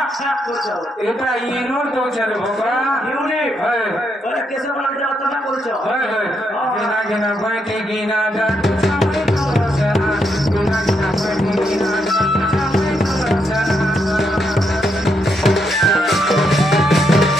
এটা ইনোর দোছারে বাবা ইউনিক হয় বলে কেসে বলা যায় তো না বলছো হয় হয় গিনা গিনা বাইতে গিনা দা সামনে করছনা গিনা গিনা বাইতে গিনা দা সামনে করছনা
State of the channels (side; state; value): both; normal; correlation 0.78